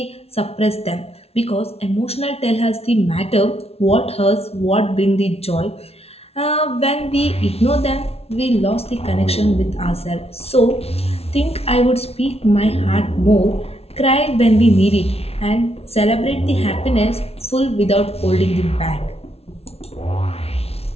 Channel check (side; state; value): right; late; 0.30 ms